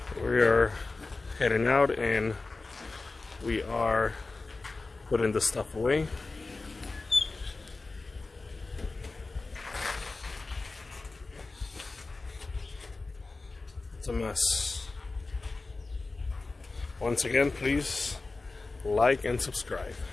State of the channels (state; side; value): quieter; right; 3.6 dB